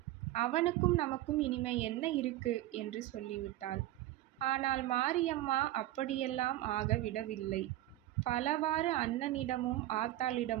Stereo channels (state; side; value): quieter; left; 15.6 dB